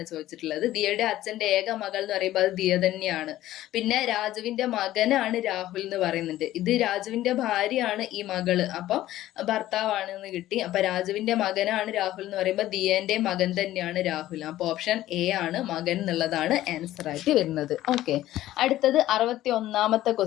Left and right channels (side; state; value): right; quieter; 14.5 dB